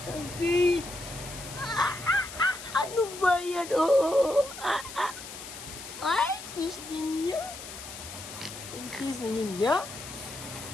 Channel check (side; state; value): left; noise; hiss, 12 dB below the sound